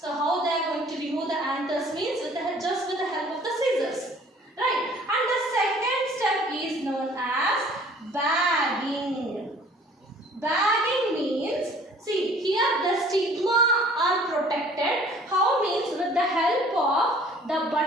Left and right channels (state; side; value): normal; both; correlation 0.53